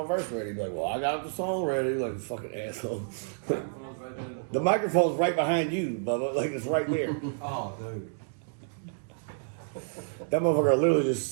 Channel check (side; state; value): left; silent; digital silence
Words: verse ready. He's like, well, I got the song ready. Like, this fucking asshole. The microphone's right behind you, Bubba. Like, it's right there. Oh, dude. That motherfucker literally just